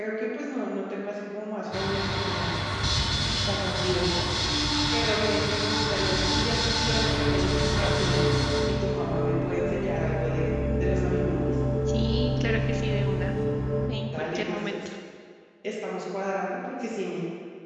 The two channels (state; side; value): identical; both; correlation 1.00